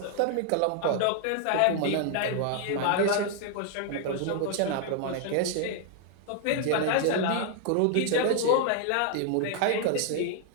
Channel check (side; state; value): both; different; correlation 0.00